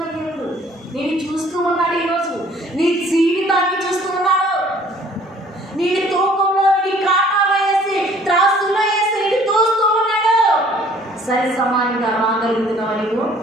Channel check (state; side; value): normal; both; correlation 0.56